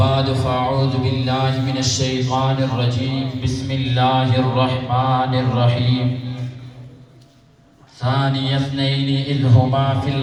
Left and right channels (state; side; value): identical; both; correlation 1.00